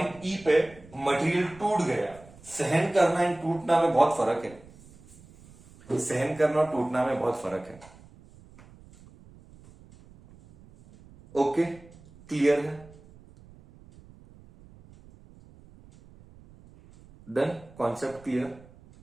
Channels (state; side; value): noise; right; rumble, 23 dB below the sound